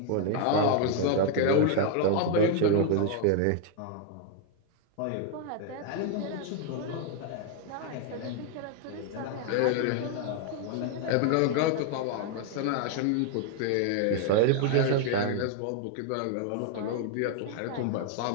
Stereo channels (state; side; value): different; both; correlation 0.00